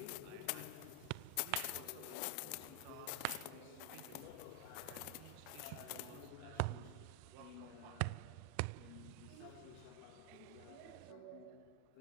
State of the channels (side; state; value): both; different; correlation 0.00